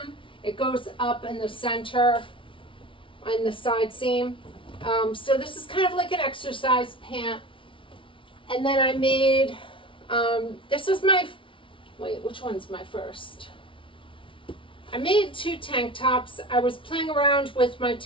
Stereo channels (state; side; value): late; right; 0.25 ms